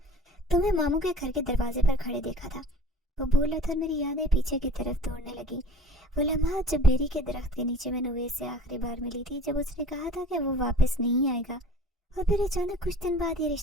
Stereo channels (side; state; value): both; normal; correlation 0.47